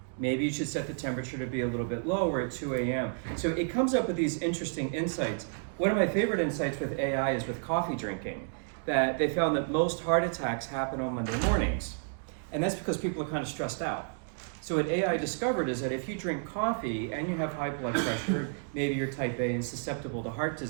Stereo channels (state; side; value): silent; left; digital silence